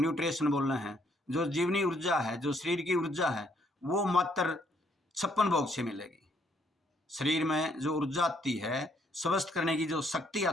बोल रहे हैं, जो जीवनी ऊर्जा है, जो शरीर की ऊर्जा है, वो मात्र 56 भोग से मिलेगी। शरीर में जो ऊर्जा आती है, स्वस्थ करने की जो शक्ति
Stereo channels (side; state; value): both; normal; correlation 0.69